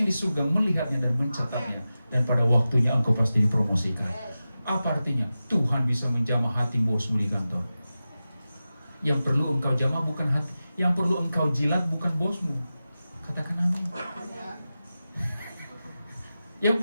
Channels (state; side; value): inverted; both; correlation -0.94